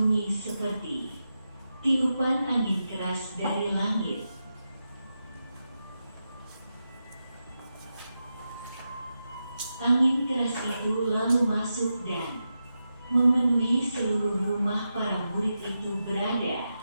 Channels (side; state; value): both; inverted; correlation -0.89